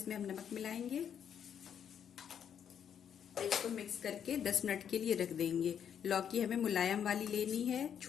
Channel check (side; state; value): right; quieter; 8.5 dB